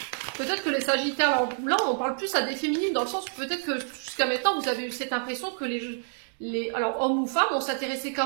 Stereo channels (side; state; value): left; silent; digital silence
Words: Peut-être que les Sagittaires, alors là on parle plus à des féminines dans le sens où peut-être que jusqu'à maintenant vous avez eu cette impression que alors hommes ou femmes, on s'intéressait